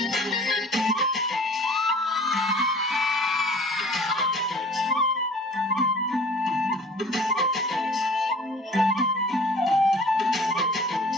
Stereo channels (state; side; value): normal; both; correlation 0.47